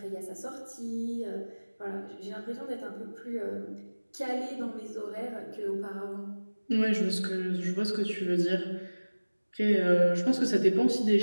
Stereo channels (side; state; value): both; inverted; correlation -1.00